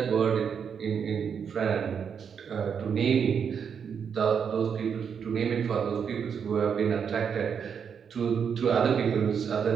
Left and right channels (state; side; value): quieter; left; 7.1 dB